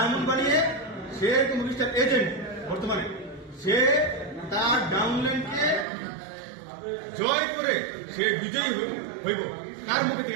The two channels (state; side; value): drops out; left; at 5.9 s